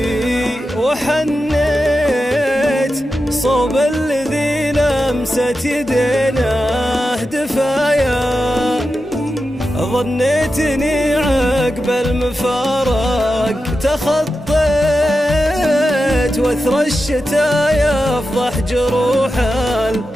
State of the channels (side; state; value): both; normal; correlation 0.90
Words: وحنيت صوب الذي لمست يدينه دفايا. ظنيتني عقب المفارق تخطيت وثر الشتاء يفضح جروح